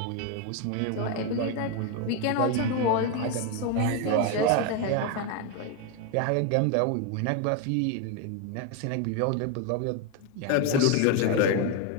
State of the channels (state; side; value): different; both; correlation 0.02